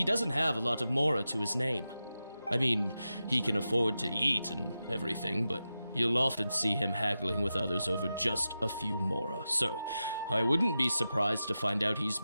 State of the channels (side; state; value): both; inverted; correlation -0.91